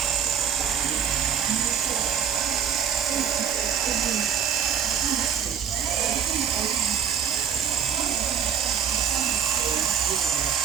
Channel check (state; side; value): quieter; left; 7.9 dB